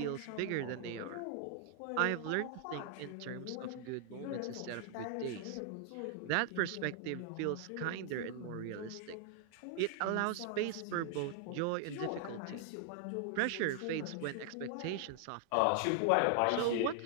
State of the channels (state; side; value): different; both; correlation 0.00